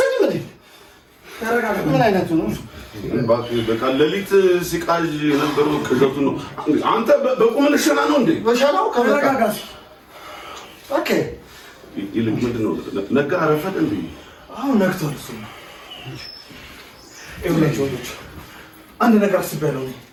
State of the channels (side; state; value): both; identical; correlation 1.00